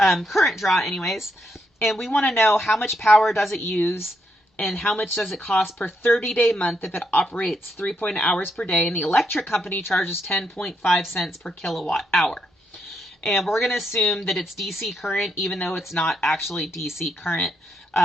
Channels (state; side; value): normal; both; correlation 0.79